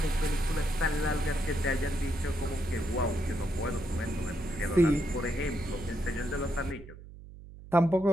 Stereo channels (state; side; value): noise; right; hum, 17 dB below the sound